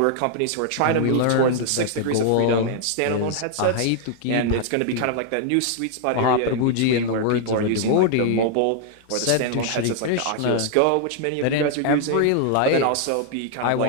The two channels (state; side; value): different; both; correlation 0.00